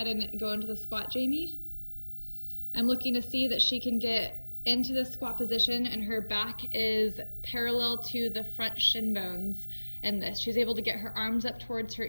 and go into the squat, Jamie. I'm looking to see that she can get into the squat position and her back is parallel to the front shin bones in this. She's able to get her arms up towards her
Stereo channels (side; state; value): both; inverted; correlation -1.00